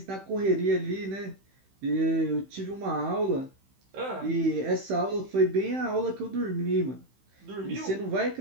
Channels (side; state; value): left; late; 15 ms